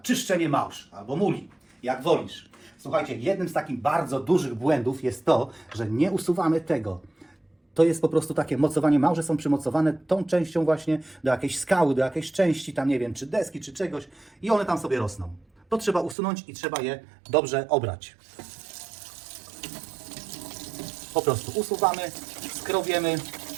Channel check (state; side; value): drops out; left; at 16.2 s